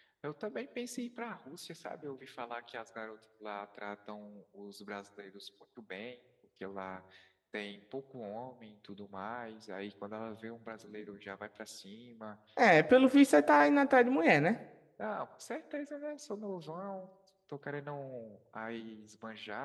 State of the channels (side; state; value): both; identical; correlation 1.00